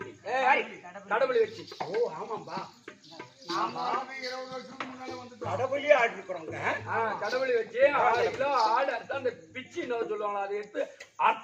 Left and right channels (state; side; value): identical; both; correlation 1.00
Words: ஏய், கடவுளை வச்சு. ஓ ஆமாம்பா. கடவுளே ஆடி இருக்கிறோங்க. கடவுளை வச்சு 6 கிலோ ஆடு அர்த்தம். அந்த பிச்சு என்ன சொல்லுவாங்களா அதை எடுத்து